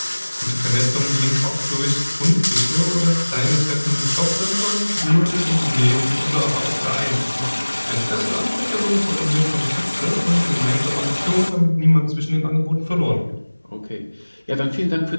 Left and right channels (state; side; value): inverted; both; correlation -1.00